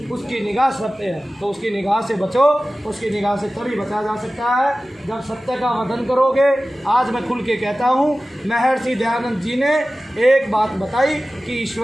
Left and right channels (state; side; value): normal; both; correlation 0.96